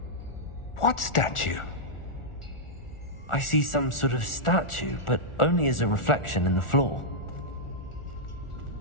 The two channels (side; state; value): right; late; 1.4 ms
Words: What statue? I see some sort of statue, but only as a reflection in the floor.